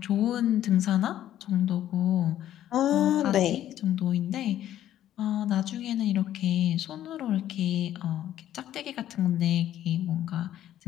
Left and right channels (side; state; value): right; quieter; 12.1 dB